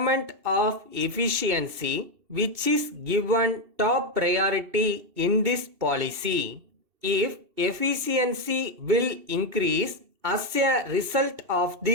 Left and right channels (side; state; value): left; late; 2.7 ms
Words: of efficiency which is given top priority in this policy. If efficiency will increase as a result of